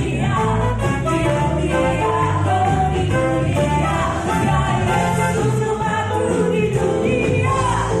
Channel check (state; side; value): identical; both; correlation 1.00